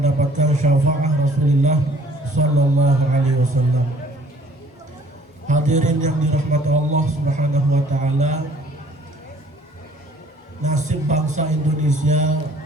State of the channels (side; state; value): both; normal; correlation 0.57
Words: syafaat Rasulullah sallallahu alaihi wasallam. Hadirin yang dirahmati Allah Subhanahu wa Ta'ala, nasib bangsa Indonesia